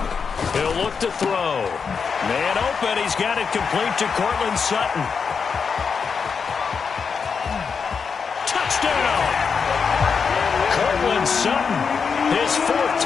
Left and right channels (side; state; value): right; quieter; 5.8 dB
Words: He'll look to throw. Man open. He's got it complete to Cortland Sutton. Touchdown! Cortland Sutton, his 4th